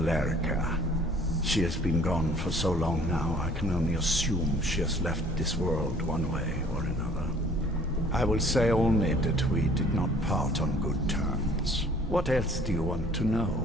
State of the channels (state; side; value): normal; both; correlation 0.55